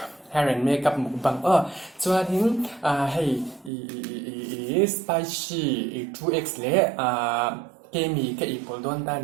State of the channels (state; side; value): drops out; left; at 3.7 s